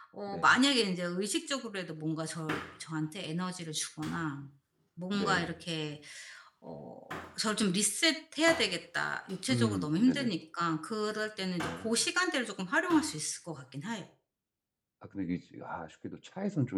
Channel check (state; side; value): identical; both; correlation 1.00